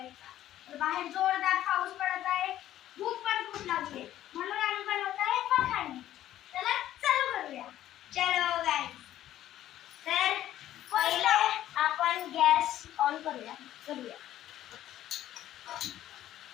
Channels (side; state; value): right; quieter; 12.8 dB